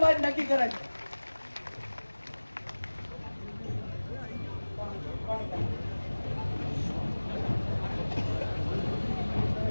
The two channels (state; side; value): inverted; both; correlation -1.00